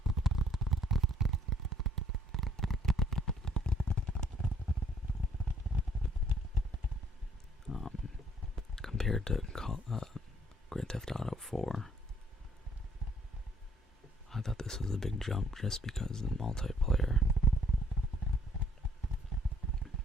Compared to Grand Theft Auto 4, I thought this was a big jump just because of the multiplayer.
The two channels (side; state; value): both; normal; correlation 0.62